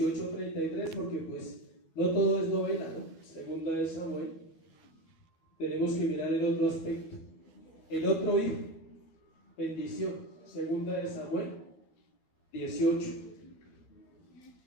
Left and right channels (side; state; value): right; late; 12 ms